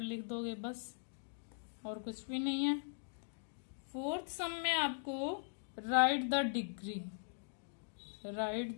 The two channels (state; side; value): silent; right; digital silence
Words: लिख दोगे बस, और कुछ भी नहीं है। फोर्थ सम में आपको right the degree, right